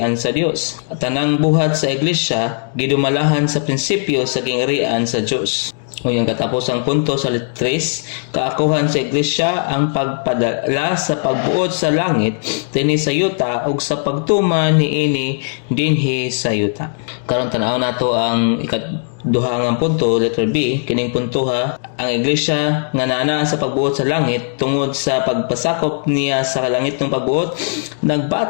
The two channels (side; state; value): right; silent; digital silence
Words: sa Dios. At tanang buhat sa iglesia gidumalahan sa prinsipyo sa gingarian sa Dios. O yung katapusang punto sa 3, kaakuhan sa iglesia ang pagpadala sa pagbuot sa langit dinhi sa yuta ug sa pagtuman niini dinhi sa yuta. Karon tan-aw nato ang ikaduha nga punto, letter B. Kining punto ha, ang iglesia nga naa sa pagbuot sa langit tungod sa pagpasakop niya sa langit ng pagbuot,